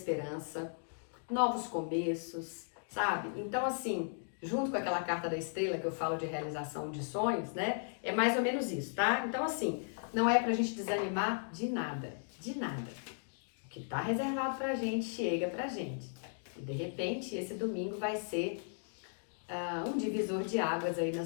novos começos, sabe? Então, assim, junto com aquela carta da estrela que eu falo de realização de sonhos, né? É mais ou menos isso, tá? Então, assim, não é pra gente desanimar de nada, de nada. O que tá reservado pra gente, chega pra gente. E, de repente, esse domingo vai ser um divisor de águas aí na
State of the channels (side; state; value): right; silent; digital silence